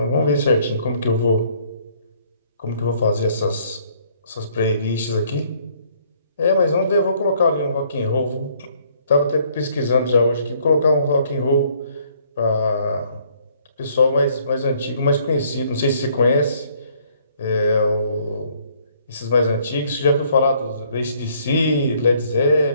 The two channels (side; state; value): both; inverted; correlation -0.64